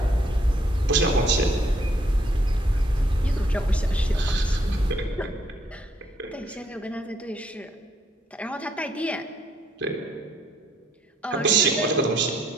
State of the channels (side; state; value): both; normal; correlation 0.69